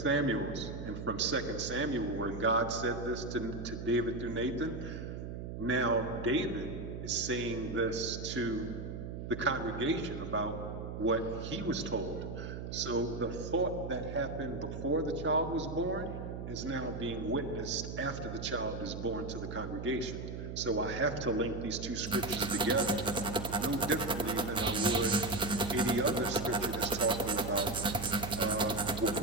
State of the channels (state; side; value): noise; right; hum, 7 dB below the sound